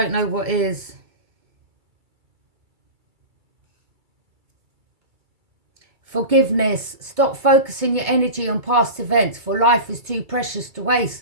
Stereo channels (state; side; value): late; left; 2.3 ms